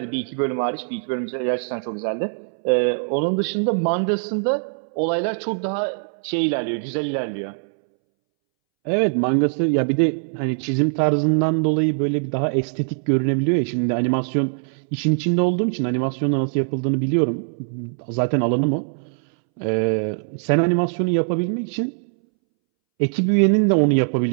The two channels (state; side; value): silent; left; 64 dB below the other